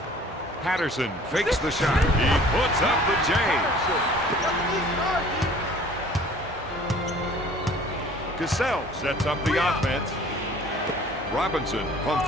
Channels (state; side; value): normal; both; correlation 0.50